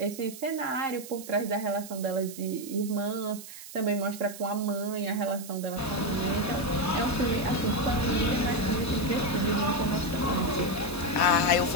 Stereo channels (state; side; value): noise; right; hiss, 14 dB below the sound